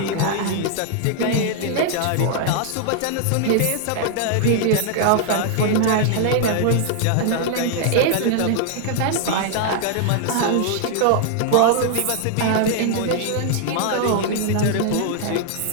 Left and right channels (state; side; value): different; both; correlation 0.00